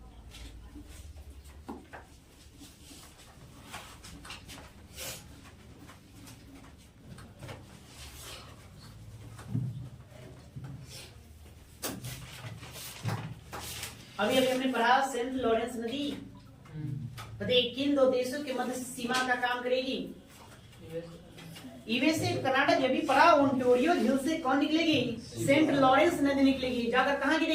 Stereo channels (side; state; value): both; identical; correlation 1.00